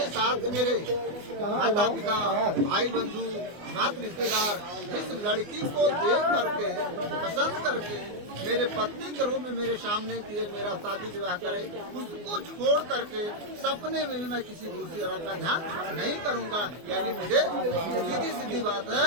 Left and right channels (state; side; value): late; left; 24 ms